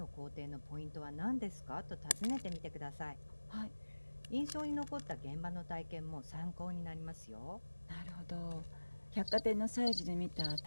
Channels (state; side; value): inverted; both; correlation -1.00